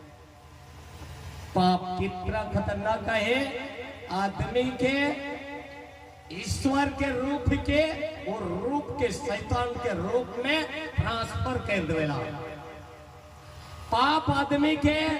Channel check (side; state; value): both; identical; correlation 1.00